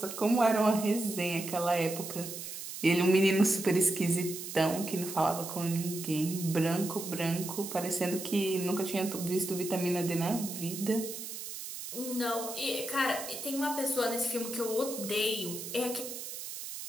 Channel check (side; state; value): right; noise; hiss, 8 dB below the sound